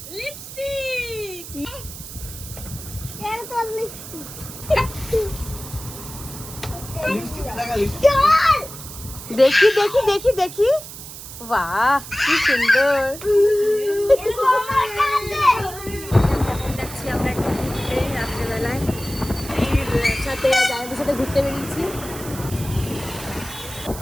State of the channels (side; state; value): right; noise; hiss, 13 dB below the sound